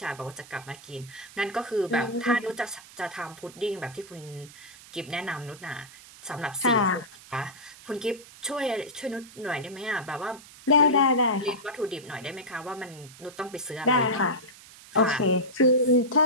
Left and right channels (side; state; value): right; noise; hiss, 20 dB below the sound